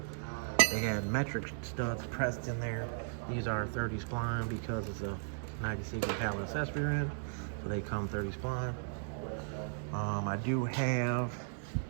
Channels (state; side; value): silent; left; digital silence